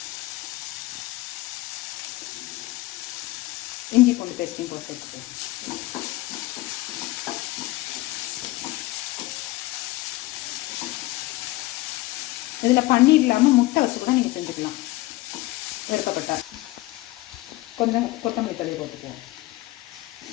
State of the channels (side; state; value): right; quieter; 19.0 dB